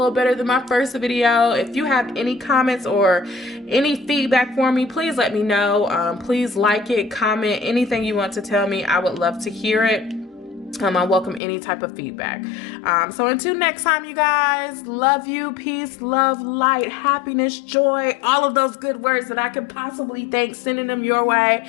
better than my first video. If you have any comments or any feedback for me, please let me know. Please like it, comment, anything you want to tell me. I would love to hear it. I welcome any type of feedback. So until next time, you guys, love you, peace, love, light, happiness, joy, all of those good words that I could possibly think, sending them your way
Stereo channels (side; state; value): right; drops out; at 11.4 s